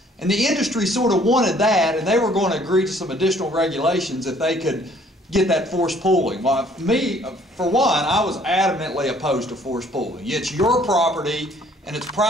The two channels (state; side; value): normal; both; correlation 0.59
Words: And the industry sort of wanted that, and they were going to agree to some additional regulations if they could get that forced pooling. Well, me, for one, I was adamantly opposed to forced pooling. It's your property, and it's